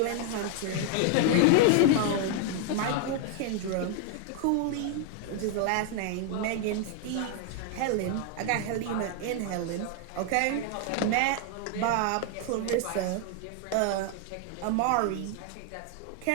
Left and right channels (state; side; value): different; both; correlation 0.00